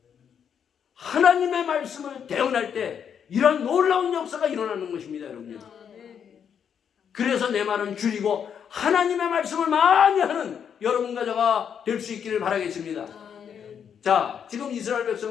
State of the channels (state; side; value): quieter; right; 7.9 dB